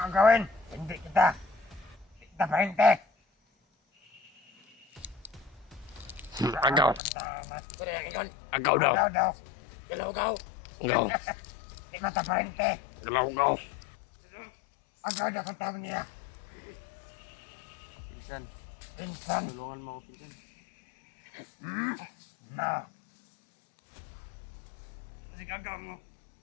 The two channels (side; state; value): right; drops out; at 7.0 s